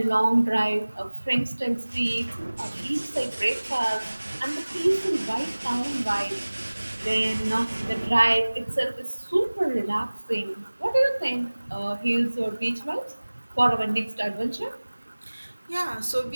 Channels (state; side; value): inverted; both; correlation -1.00